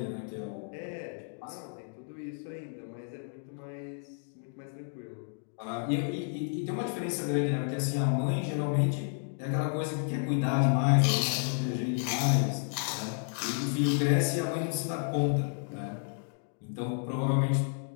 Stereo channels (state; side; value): silent; right; 57 dB below the other